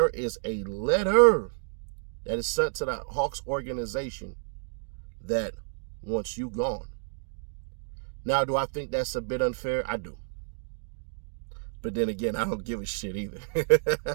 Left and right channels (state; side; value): silent; left; digital silence